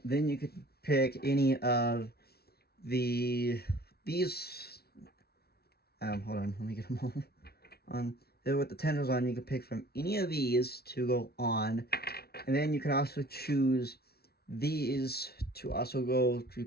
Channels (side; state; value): right; late; 0.45 ms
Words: then you could pick any of these. Hold on, let me get them all on. Then with the tendrils on, you could pick from any of these to go on, and then you could also choose these to also go to